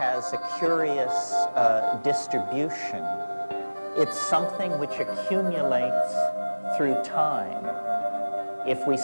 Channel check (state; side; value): inverted; both; correlation -1.00